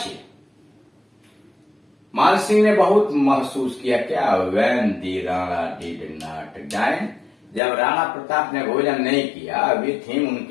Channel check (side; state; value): right; drops out; at 7.6 s